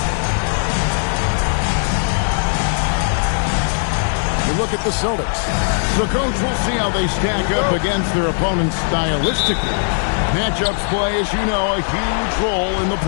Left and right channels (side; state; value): right; silent; 67 dB below the other